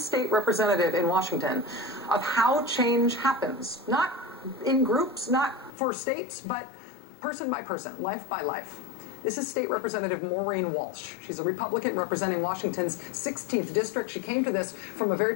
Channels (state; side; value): drops out; right; at 5.7 s